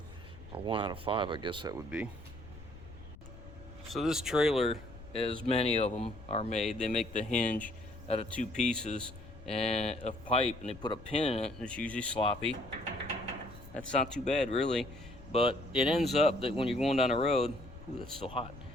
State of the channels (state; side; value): noise; left; rumble, 16 dB below the sound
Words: or 1 out of 5, I guess that would be. So this trailer, as many of them are made, they make the hinge out of 2 pieces and of pipe, and they put a pin in it, and it's usually sloppy. That's not too bad, really. But it ends up that when you're going down the road, ooh, that's still hot.